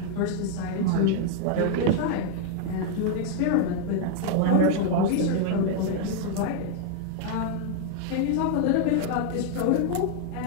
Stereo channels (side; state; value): both; different; correlation 0.00